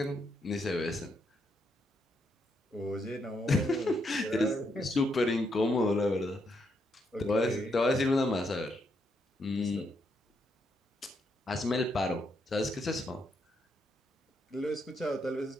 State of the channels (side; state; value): both; normal; correlation 0.78